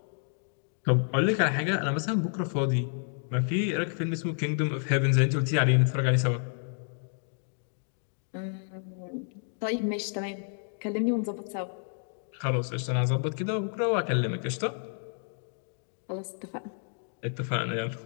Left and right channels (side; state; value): right; silent; 58 dB below the other